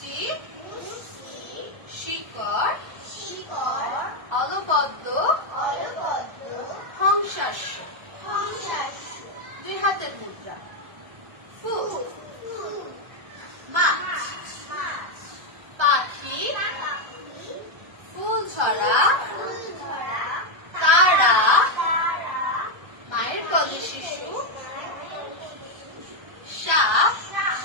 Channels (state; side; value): late; left; 1.3 ms